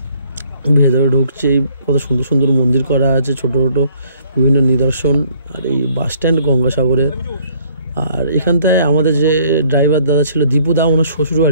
ভেতরে ঢুকছে, কত সুন্দর সুন্দর মন্দির করা আছে, ছোটো ছোটো বিভিন্ন নিদর্শন। আর এই বাস স্ট্যান্ড গঙ্গাসাগরের। আর এখানটায় আমাদের যে ড্রাইভার দাদা ছিল দীপুদা, ওনার শ্বশুর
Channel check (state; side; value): inverted; both; correlation -0.61